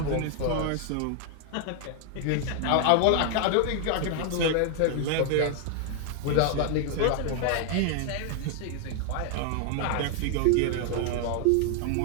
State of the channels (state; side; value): different; both; correlation 0.00